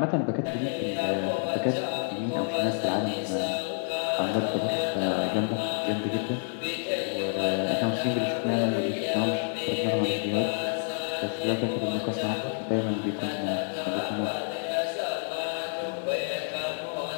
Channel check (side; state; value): right; silent; 59 dB below the other